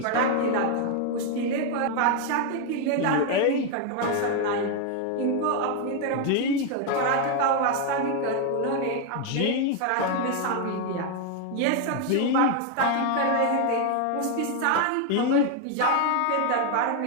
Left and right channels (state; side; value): different; both; correlation 0.01